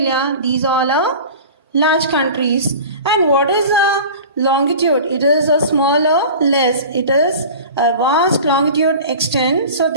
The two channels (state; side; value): inverted; both; correlation -0.38